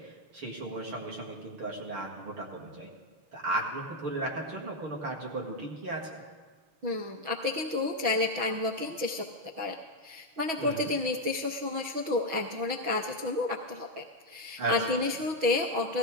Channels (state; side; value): late; left; 6.2 ms